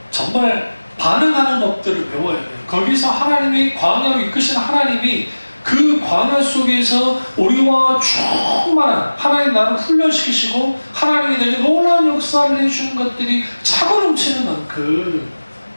정말 반응하는 법들을 배워야 돼요. 거기서 하나님이 광야로 이끄시는 하나님이 그 광야 속에서 우리와 충만한 하나님 나를 훈련시키시고 하나님이 내게 놀라운 역사를 해주는 것들이 차고 넘치는 만큼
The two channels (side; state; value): both; inverted; correlation -1.00